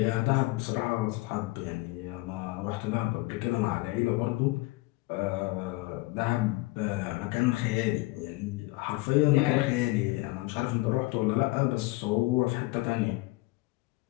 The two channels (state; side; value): quieter; right; 21.7 dB